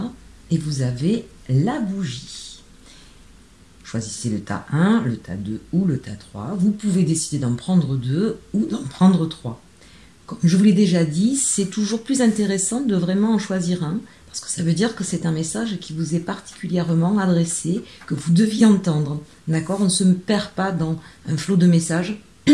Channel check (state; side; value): identical; both; correlation 1.00